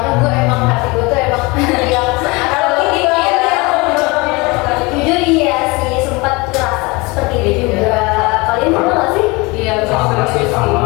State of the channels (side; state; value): right; quieter; 25.3 dB